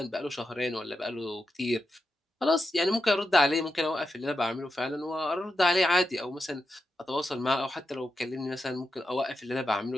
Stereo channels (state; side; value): normal; both; correlation 0.88